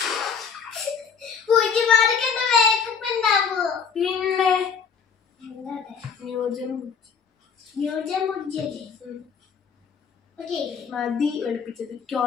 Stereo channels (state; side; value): quieter; right; 6.3 dB